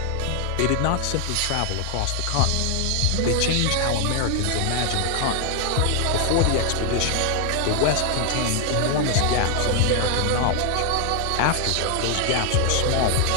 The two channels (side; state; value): both; different; correlation 0.00